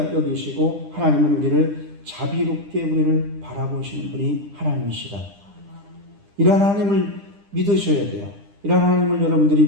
여기시고 하나님은 우리를 자비롭게 우리를 바라보시는 분이 하나님이시다. 이러한 하나님을 믿으셔야 돼요. 이러한 하나님을 여러분들이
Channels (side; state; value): left; late; 9.9 ms